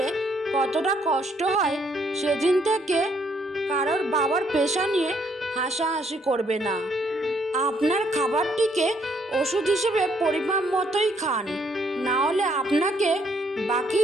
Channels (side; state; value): both; normal; correlation 0.69